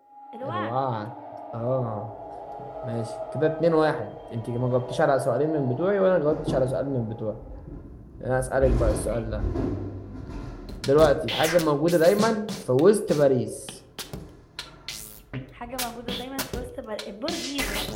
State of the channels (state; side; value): identical; both; correlation 1.00